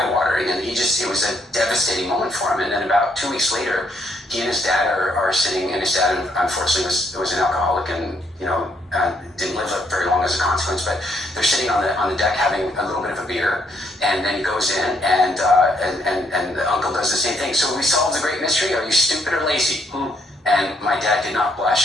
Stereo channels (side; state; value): both; normal; correlation 0.72